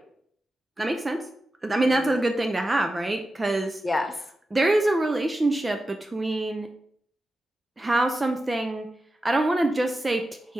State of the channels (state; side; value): normal; both; correlation 0.92